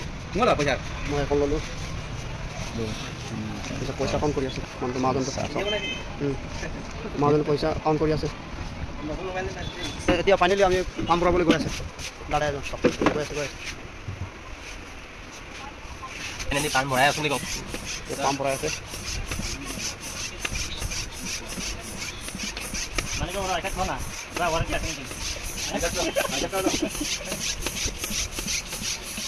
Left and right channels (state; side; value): identical; both; correlation 1.00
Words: मोला पैसा मैं कल लो। पैसा कम करिया से मान तो माजोन तो सब। माजोन पैसा कम करिया से। এতিয়া ফাইনালি আমি কাম কৰাবলৈ গৈ আছে দাদা এজন সব গৈ আছে ফাইনালি কাম ভৰাই আছো নেকি কাম ভৰাই আছে মানে কি ওরা এটা খাও না ওরা ওরা কি